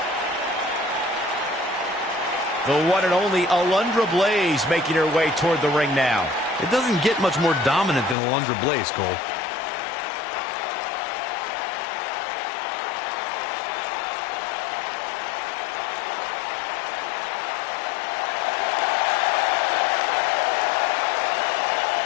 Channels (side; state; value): right; drops out; at 8.2 s